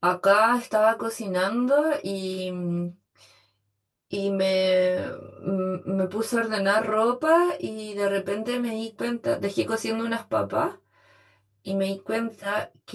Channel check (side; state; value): both; identical; correlation 1.00